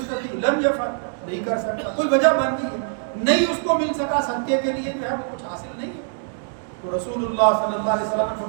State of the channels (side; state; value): left; silent; digital silence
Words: لم یفعل، نہیں کر سکتا، کوئی وجہ بن گئی ہے، نہیں اس کو مل سکا صدقے کے لیے جو ہے وہ کچھ حاصل نہیں ہے، تو رسول اللہ صلی اللہ علیہ وسلم نے